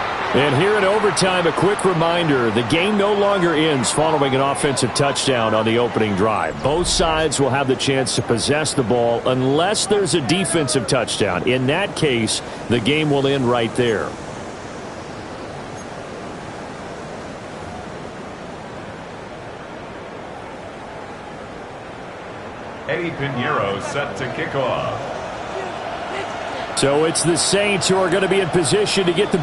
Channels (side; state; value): both; identical; correlation 1.00